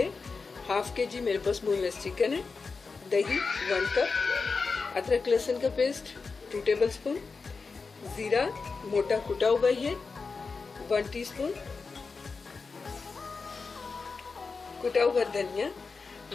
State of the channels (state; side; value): quieter; right; 4.6 dB